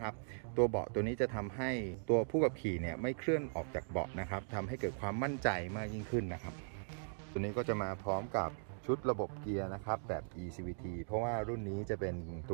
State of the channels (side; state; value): left; silent; digital silence